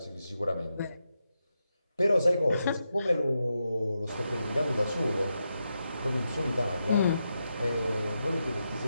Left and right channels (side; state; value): both; inverted; correlation -0.86